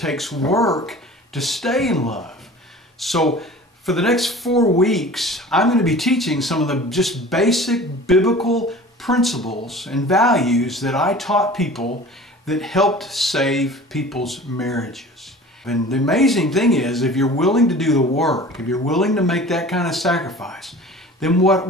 work to stay in love. So for the next 4 weeks, I'm going to be teaching some of the just basic biblical principles and values that I taught people that helped save people's marriages. And the amazing thing is, if you're willing to do the work, if you're willing to make that kind of sacrifice, then what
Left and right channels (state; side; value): normal; both; correlation 0.42